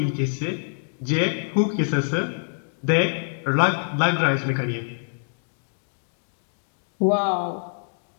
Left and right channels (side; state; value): right; silent; digital silence